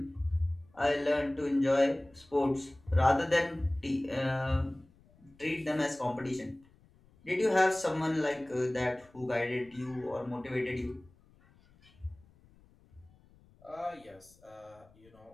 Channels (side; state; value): left; noise; rumble, 28 dB below the sound